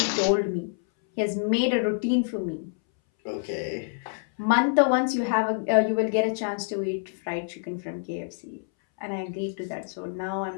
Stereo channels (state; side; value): silent; right; 60 dB below the other